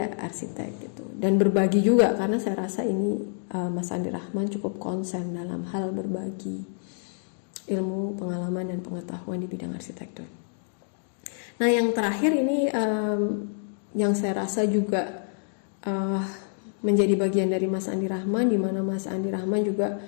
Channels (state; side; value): silent; right; digital silence